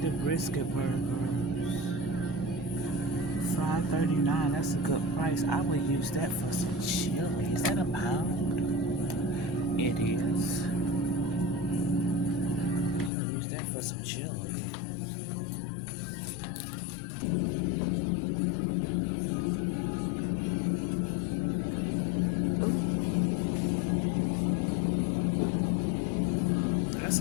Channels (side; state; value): right; drops out; at 13.1 s